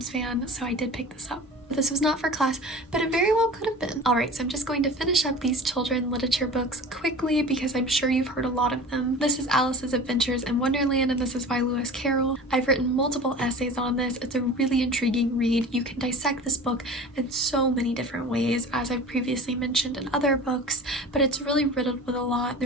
fan, so I did pick this up. This was not for class, but it very well could have been. Alright, so I'm just going to finish up these children literature books quickly because I'm sure you've heard a lot of them. This is Alice's Adventures in Wonderland, and this is by Lewis Carroll. I've written multiple essays on this. It's a really intriguing read. You can dissect this book in so many different ways, as I've previously mentioned in other books, but it's really riddled with a lot.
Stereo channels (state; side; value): normal; both; correlation 0.37